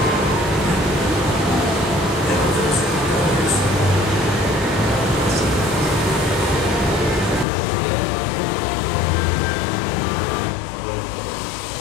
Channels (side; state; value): right; drops out; at 7.5 s